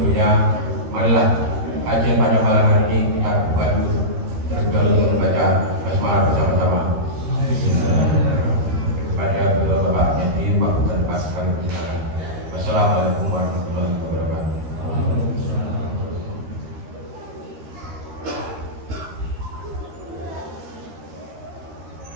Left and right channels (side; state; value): left; late; 13 ms